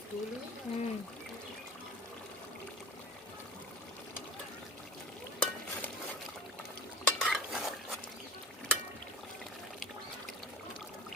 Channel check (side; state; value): both; normal; correlation 0.35